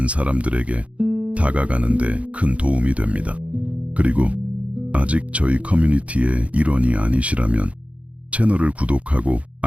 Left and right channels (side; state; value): left; late; 0.064 ms